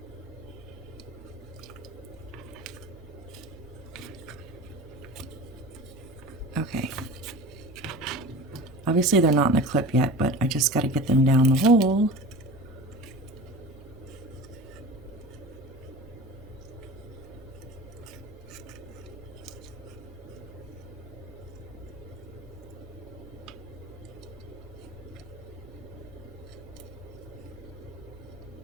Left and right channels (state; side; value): noise; right; hum, 21 dB below the sound